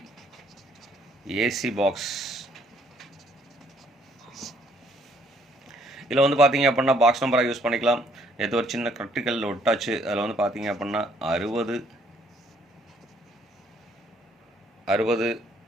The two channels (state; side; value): normal; both; correlation 0.65